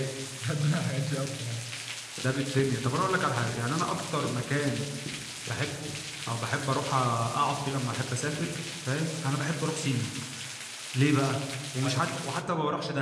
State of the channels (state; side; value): identical; both; correlation 1.00